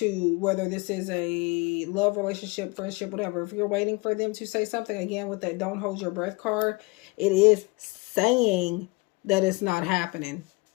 whether this is a love relationship, friendship, whatever, if you're waiting for them to say something, again, with that don't hold your breath card, it is saying that it's not happening.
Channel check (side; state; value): right; quieter; 26.0 dB